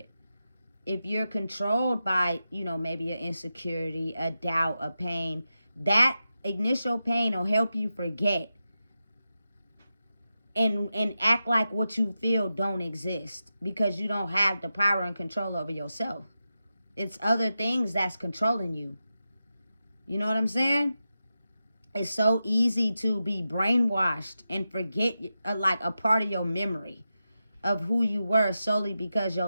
If you're controlled by, maybe an insecurity, a doubt, a pain, that initial pain will help you forget and act like what you feel don't exist because you don't have the power and control over yourself. It's other things that's controlling you. You know what I'm saying? It's so easy to be brainwashed and forget like a part of your memory of who you were solely because your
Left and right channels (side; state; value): both; inverted; correlation -0.90